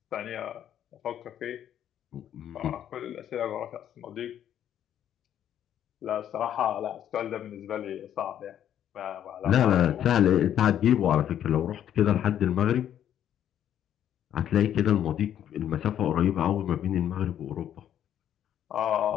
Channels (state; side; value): quieter; right; 10.3 dB